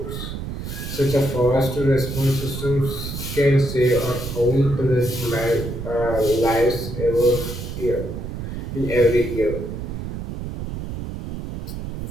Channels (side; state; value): right; noise; rumble, 7 dB below the sound